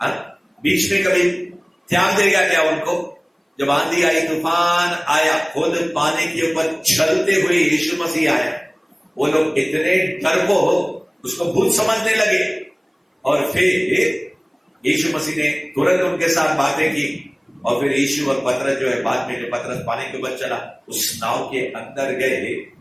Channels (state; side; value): identical; both; correlation 1.00